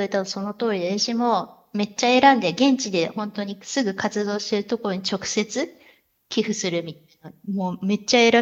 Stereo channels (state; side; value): identical; both; correlation 1.00